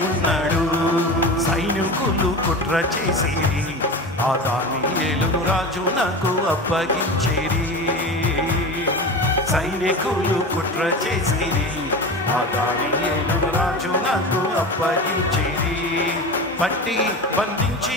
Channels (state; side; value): normal; both; correlation 0.28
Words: ఉన్నాడు సైనికులు కుట్ర చేసిరి ఆ దానియేలును రాజు నాకు అప్పగించేరి సైనికులు కుట్ర చేసిరి ఆ దానియేలును రాజు నాకు అప్పగించేరి పట్టి బంధించి